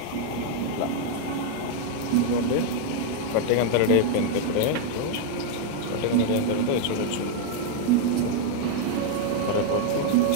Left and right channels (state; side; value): different; both; correlation 0.00